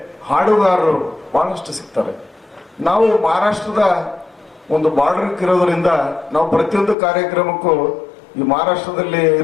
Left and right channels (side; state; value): right; drops out; at 7.0 s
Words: ಹಾಡುಗಾರರು ಬಹಳಷ್ಟು ಸಿಗ್ತಾರೆ. ನಾವು ಮಹಾರಾಷ್ಟ್ರದ ಒಂದು ಬಾರ್ಡರ್ ಇರೋದ್ರಿಂದ ನಾವು ಪ್ರತಿಯೊಂದು ಕಾರ್ಯಕ್ರಮಕ್ಕೂ ಈ ಮಹಾರಾಷ್ಟ್ರದಲ್ಲಿ